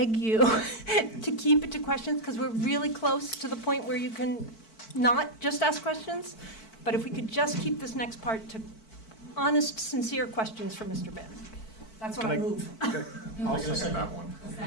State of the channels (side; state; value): right; late; 4.5 ms